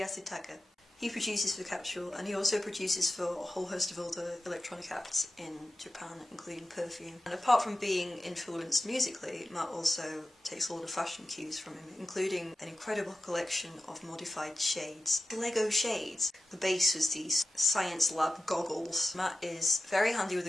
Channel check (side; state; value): both; normal; correlation 0.93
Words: He produces for Capsule, and he also produces for a whole host of other electronic acts in Japan, including Perfume. And apart from being influenced musically, Matt also takes a lot of fashion cues from him, including an incredible collection of modified shades. Lego shades. The base was these science lab goggles. Matt is very handy with